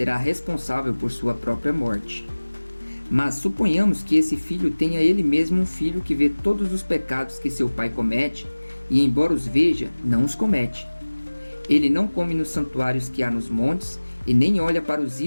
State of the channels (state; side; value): inverted; both; correlation -1.00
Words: responsável por sua própria morte. Mas suponhamos que esse filho tenha ele mesmo um filho que vê todos os pecados que seu pai comete, e embora os veja, não os comete. Ele não come nos santuários que há nos montes, e nem olha para os